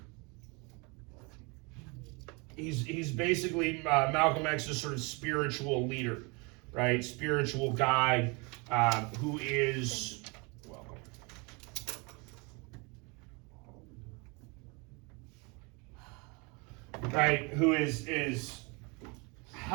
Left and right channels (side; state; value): left; quieter; 29.7 dB